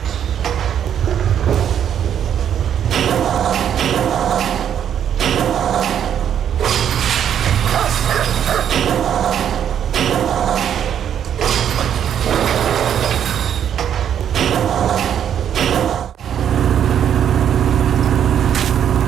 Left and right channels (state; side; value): quieter; left; 9.2 dB